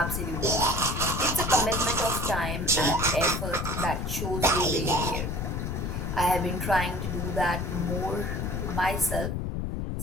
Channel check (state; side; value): noise; left; rumble, 2 dB below the sound